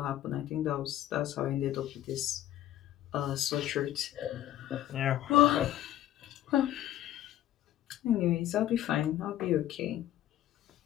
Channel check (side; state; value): right; quieter; 13.1 dB